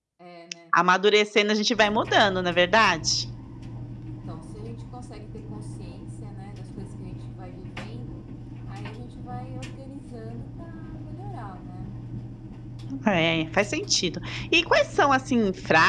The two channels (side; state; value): both; identical; correlation 1.00